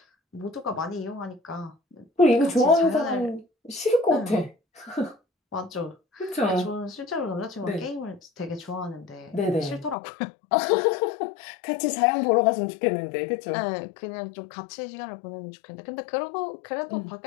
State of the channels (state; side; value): drops out; right; at 10.0 s